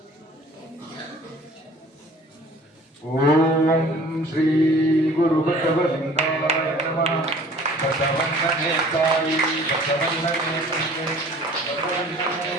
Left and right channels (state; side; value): normal; both; correlation 0.49